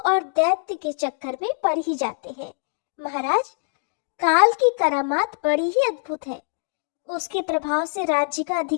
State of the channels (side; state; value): right; silent; digital silence